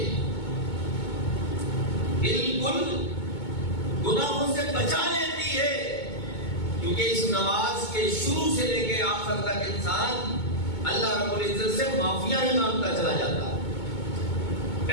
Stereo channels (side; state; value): right; late; 2.2 ms